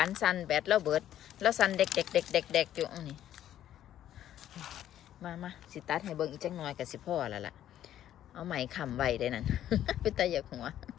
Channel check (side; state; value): right; quieter; 11.6 dB